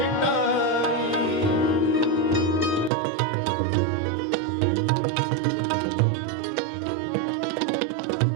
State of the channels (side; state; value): left; drops out; at 2.9 s